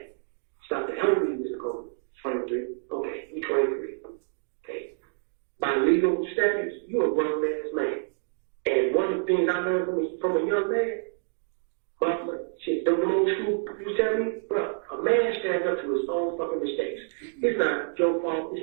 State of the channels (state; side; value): silent; left; digital silence